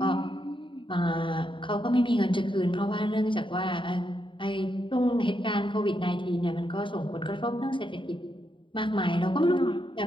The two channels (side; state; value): right; late; 0.24 ms